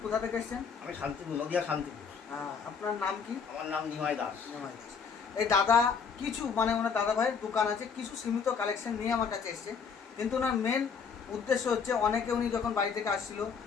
কোথা থেকে এসছেন? আমি শান্তিপুর, নদিয়া শান্তিপুর। আপনার নাম কি? আমার নাম নিমাই দাস। নিমাই দাস। এই দাদা কিছু ওনার দাদাভাইয়ের দোকান আছে, কিছু সীমিত কালেকশন নিয়ে আমার কাছে এসছে। কিন্তু ওনার মেন উদ্দেশ্য হচ্ছে, অনেকে উনি যখন বাড়ি থেকে আসছিল,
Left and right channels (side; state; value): right; quieter; 6.1 dB